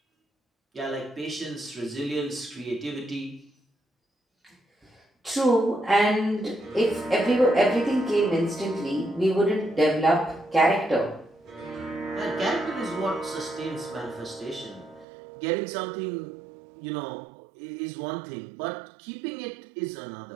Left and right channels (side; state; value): left; drops out; at 15.1 s